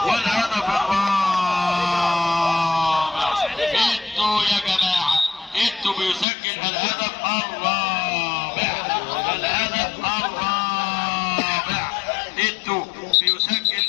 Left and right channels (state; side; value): drops out; right; at 6.2 s